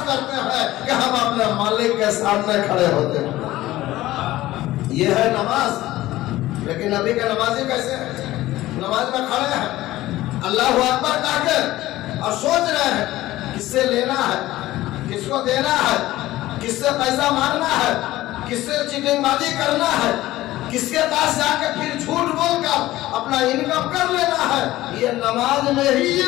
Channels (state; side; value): quieter; right; 16.3 dB